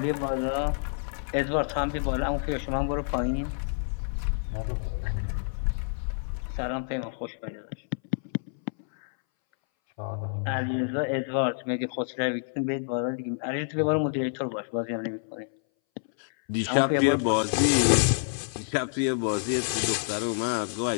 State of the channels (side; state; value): right; silent; 59 dB below the other